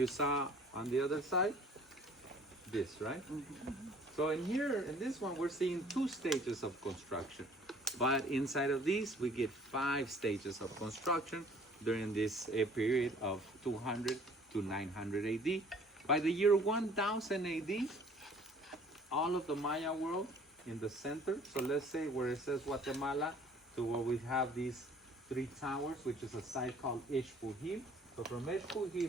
saw on the other side, this, right? So in here, in this one, we're seeing 2 stages of construction. But inside of these, we get 5 stages of construction during this period of 200 to 900 AD. By the year 1000 AD, all of the Maya world in the center, so let's say where it says Guatemala, to where we have these 3 towers, which is a site called Ixpujil. So from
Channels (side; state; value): both; normal; correlation 0.53